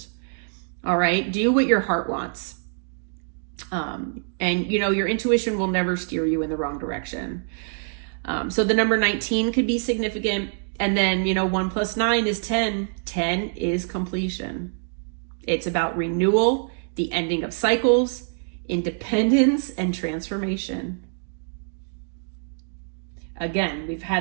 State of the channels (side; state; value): left; silent; digital silence